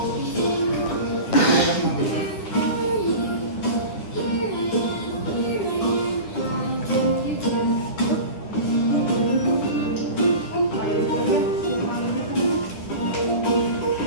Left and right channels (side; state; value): right; late; 9.9 ms